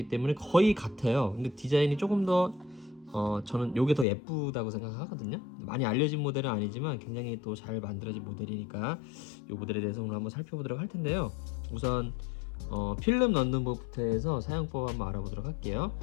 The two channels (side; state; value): right; drops out; at 4.0 s